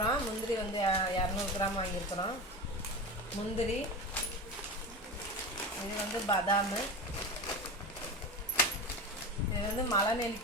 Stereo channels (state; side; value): normal; both; correlation 0.25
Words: முந்திரி வந்து 200 கிராம் வாங்கியிருக்கிறோம். முந்திரி, இது வந்து பாதாம், இது வந்து மலை